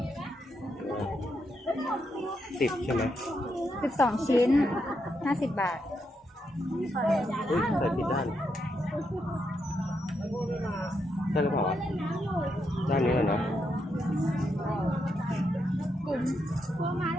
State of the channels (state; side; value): normal; both; correlation 0.81